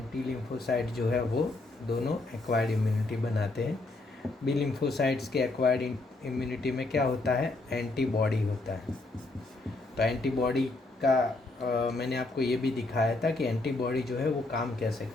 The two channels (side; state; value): right; quieter; 3.0 dB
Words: T lymphocyte जो है वो दोनों एक्वायर्ड इम्यूनिटी बनाते हैं। बी लिम्फोसाइट्स के एक्वायर्ड इम्यूनिटी में क्या होता है, एंटीबॉडी होता है। तो एंटीबॉडी का मैंने आपको ये भी दिखाया था कि एंटीबॉडी जो है वो काम कैसे